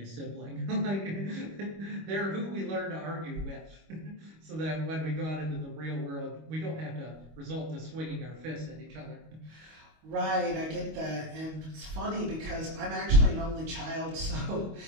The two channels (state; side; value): late; left; 25 ms